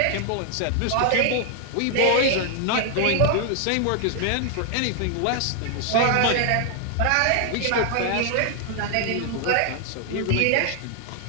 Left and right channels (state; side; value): different; both; correlation 0.00